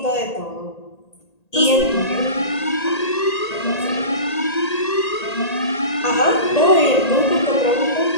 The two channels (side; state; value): right; late; 1.8 ms